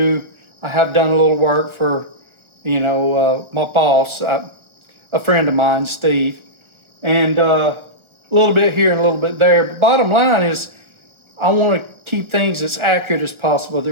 have done a little work for, my boss, a friend of mine, Steve, and a little bit here and a little bit there. But bottom line is, I want to keep things as accurate as possible.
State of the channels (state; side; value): late; left; 1.4 ms